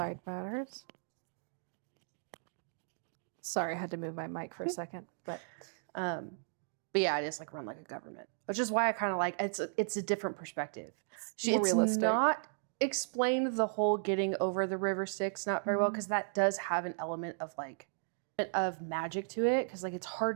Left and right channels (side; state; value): left; silent; digital silence